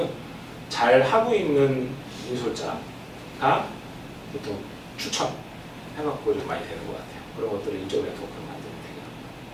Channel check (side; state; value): both; identical; correlation 1.00